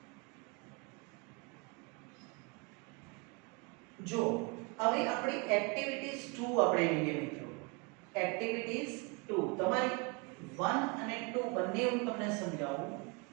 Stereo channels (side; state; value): left; quieter; 29.6 dB